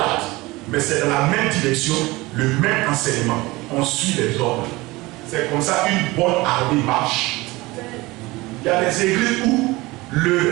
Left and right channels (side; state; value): left; quieter; 21.2 dB